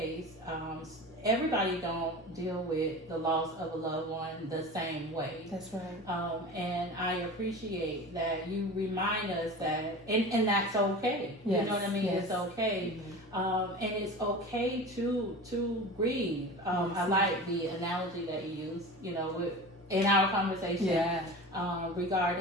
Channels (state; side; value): normal; both; correlation 0.33